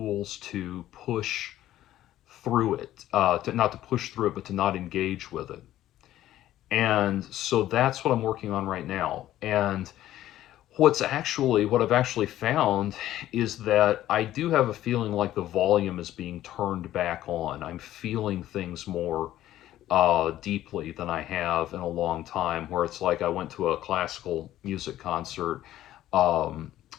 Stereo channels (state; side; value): quieter; right; 13.5 dB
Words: to push through it, not to push through it, but to not engage with it. And so that's what I'm working on right now. And what I've actually found is that I do have a feeling like the volume is being turned back on. I'm feeling things more deeply than I have in a long time, where it's like I went to a classical music concert um,